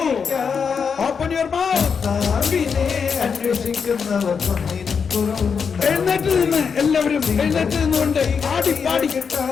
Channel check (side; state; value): right; quieter; 6.1 dB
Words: കർത്താവിനെ അന്വേഷിക്കുന്നവർക്കൊന്നിനും കുറവുണ്ടാവുകയില്ല. എഴുന്നേറ്റ് നിന്ന് എല്ലാവരും എഴുന്നേറ്റ് നിന്നുകൊണ്ട് ആടി പാടി.